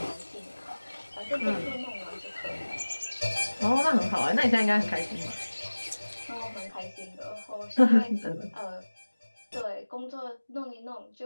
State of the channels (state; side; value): inverted; both; correlation -1.00